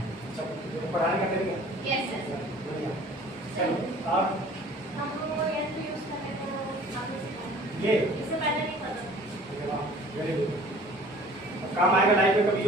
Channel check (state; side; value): normal; both; correlation 0.49